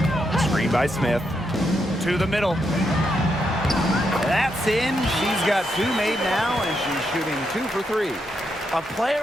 Screen by Smith. To the middle. That's in. She's got 2 made now, and she's shooting 2 for 3. A player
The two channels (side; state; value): both; normal; correlation 0.81